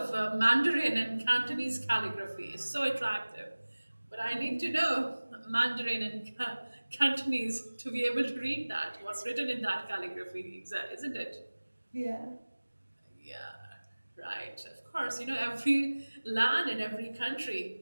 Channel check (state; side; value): inverted; both; correlation -1.00